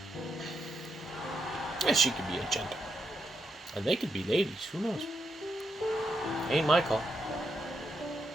Yeah, she could be a gent. And they could be ladies, who knows? Ain't my call.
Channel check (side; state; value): both; normal; correlation 0.81